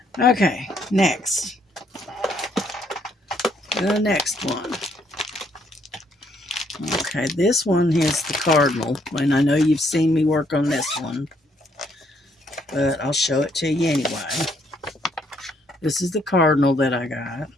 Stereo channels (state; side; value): normal; both; correlation 0.70